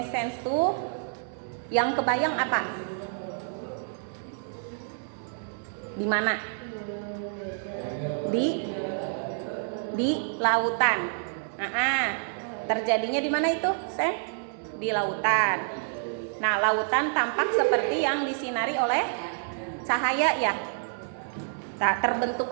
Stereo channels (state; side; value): silent; left; 59 dB below the other